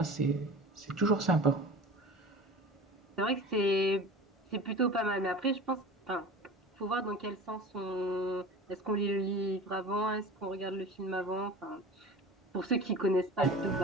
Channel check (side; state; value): both; normal; correlation 0.37